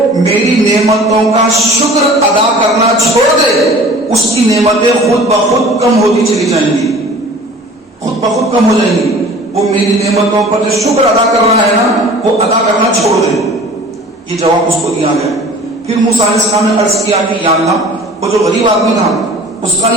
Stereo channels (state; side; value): normal; both; correlation 0.45